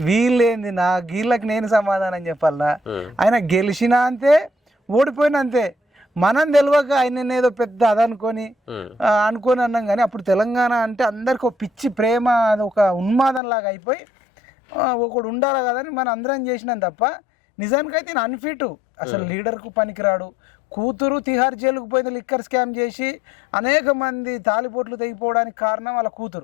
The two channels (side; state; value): right; drops out; at 13.4 s